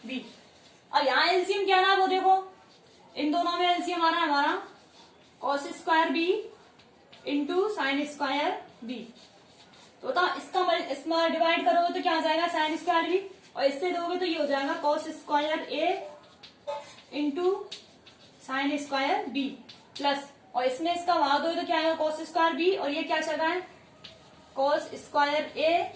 b। अब यहाँ एलसीएम क्या रहा है वो देखो, इन दोनों में एलसीएम आ रहा है हमारा cos square b into sine square b। तो इसमें डिवाइड करोगे तो क्या आ जाएगा साइन स्क्वायर b और इससे दोगे तो ये हो जाएगा cos square a into sine square b plus, और इसमें इसका भाग दोगे तो क्या आएगा cos स्क्वायर b और ये क्या चल रहा है cos square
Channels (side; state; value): both; identical; correlation 1.00